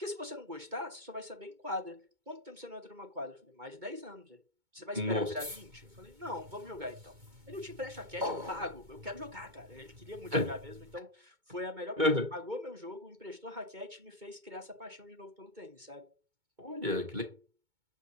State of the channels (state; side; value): late; left; 2.2 ms